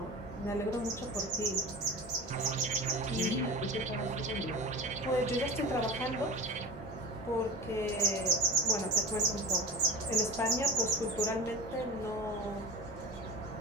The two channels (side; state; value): both; normal; correlation 0.31